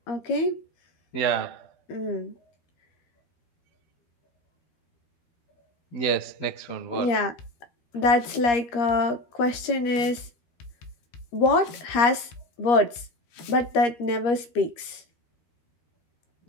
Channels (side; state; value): right; late; 13 ms